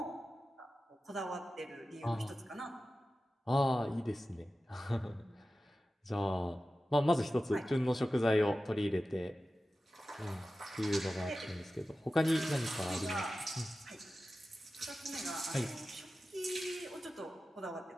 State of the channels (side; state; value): both; normal; correlation 0.94